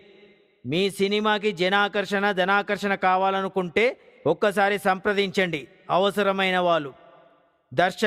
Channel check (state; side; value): identical; both; correlation 1.00